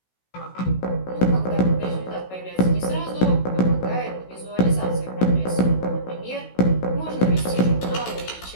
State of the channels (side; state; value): right; late; 16 ms